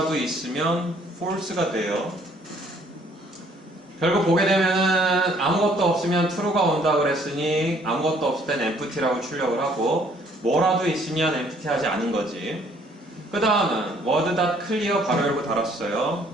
있으면 false가 돼요. 결국 보게 되면은 아무것도 없으면 true가 온다 그랬으니 아무것도 없을 땐 empty라고 출력을 하고 뭐라도 있으면 empty 하지 않은 거지. 그 다음은 word.clear 가로 열고 달았어요.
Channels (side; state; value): both; normal; correlation 0.61